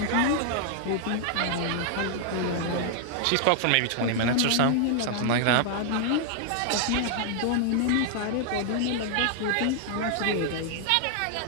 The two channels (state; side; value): different; both; correlation 0.00